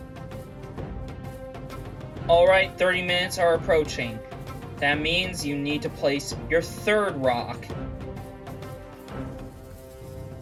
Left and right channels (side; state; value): both; identical; correlation 1.00